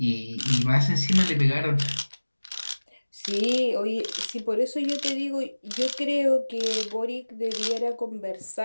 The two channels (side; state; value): both; inverted; correlation -1.00